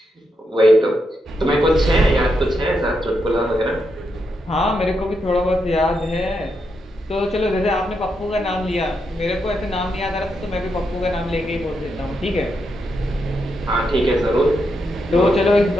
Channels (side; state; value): both; normal; correlation 0.82